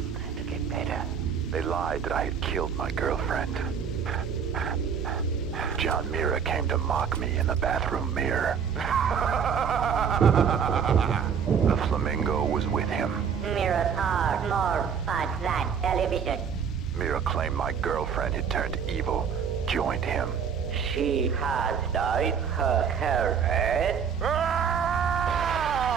to get better. They lied that I had killed my girlfriend. John Mira came to mock me in the bathroom mirror. The flamingo was with him. Mirrors are more fun than television. Mira claimed my girlfriend had turned evil, joined him. She has dyed her hair red. I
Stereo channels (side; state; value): left; quieter; 7.1 dB